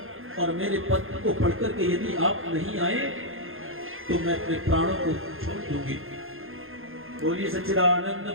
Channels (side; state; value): left; late; 0.60 ms